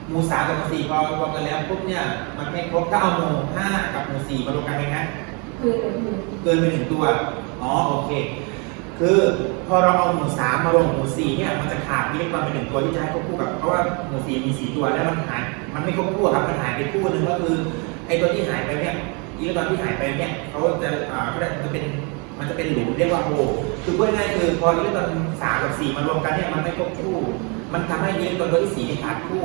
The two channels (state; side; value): quieter; left; 32.8 dB